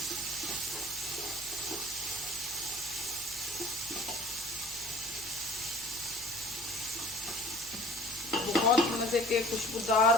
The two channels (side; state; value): right; noise; hum, 24 dB below the sound